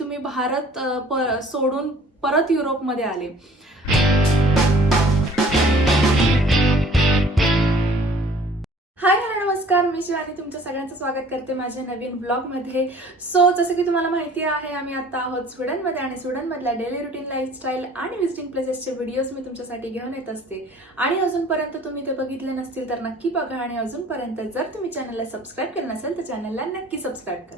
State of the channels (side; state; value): both; normal; correlation 0.52